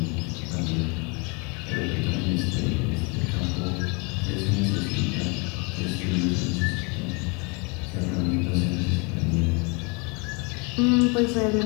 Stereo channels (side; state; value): right; quieter; 31.7 dB